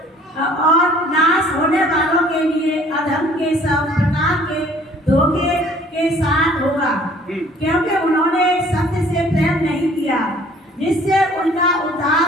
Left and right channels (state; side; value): normal; both; correlation 0.55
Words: और नाश होने वालों के लिए अधर्म के सब प्रकार के धोखे के साथ होगा, क्योंकि उन्होंने सत्य से प्रेम नहीं किया जिससे उनका